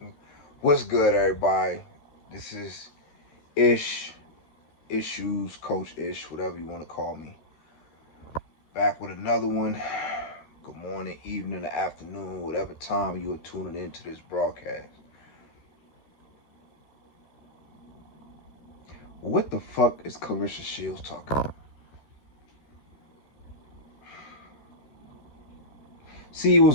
what's good, everybody? This is Ishues, Coach Ish, whatever you want to call me. Back with another one. Good morning, evening, or afternoon, whatever time you are tuning into this broadcast. What the fuck is Claressa Shields talking about? See, it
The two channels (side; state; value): right; late; 13 ms